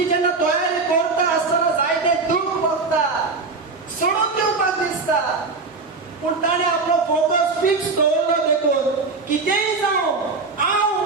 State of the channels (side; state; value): left; quieter; 4.1 dB